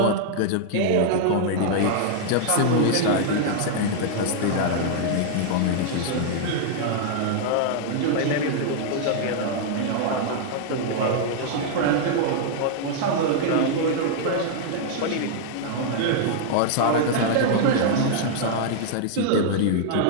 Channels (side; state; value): both; different; correlation -0.01